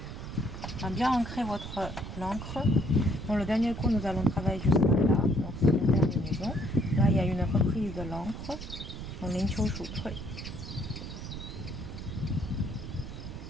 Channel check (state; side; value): noise; right; rumble, 9 dB below the sound